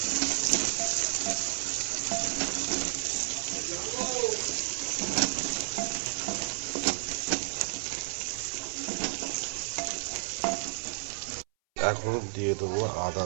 এখন দিয়ে দেবো আদা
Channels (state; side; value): silent; left; 57 dB below the other